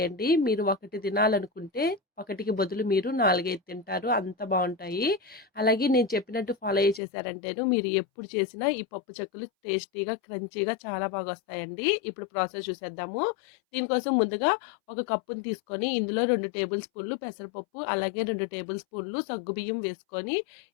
మీరు ఒకటి తినాలనుకుంటే ఒకటికి బదులు మీరు 4, 5 తింటారు, అంత బాగుంటాయి. అలాగే నేను చెప్పినట్టు ఫాలో చేశారంటేను మీరు ఎప్పుడు చేసినా ఈ పప్పు చెక్కలు టేస్టీగా క్రంచీగా చాలా బాగా వస్తాయండి. ఇప్పుడు ప్రాసెస్ చూసేద్దాము. దీనికోసం ముందుగా ఒక కప్పుని తీసుకొని ఇందులో 2 టేబుల్ స్పూన్లు పెసరపప్పు, అలాగే 2 టేబుల్ స్పూన్లు సగ్గుబియ్యం వేసుకొని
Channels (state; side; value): drops out; right; at 7.0 s